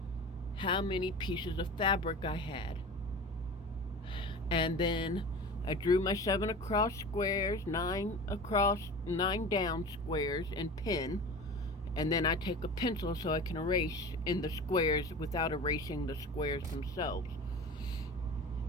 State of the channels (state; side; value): normal; both; correlation 0.35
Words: how many pieces of fabric I had. And then I drew my 7 across squares, 9 across, 9 down squares in pen. And then I take a pencil so I can erase in the squares without erasing the squares themselves.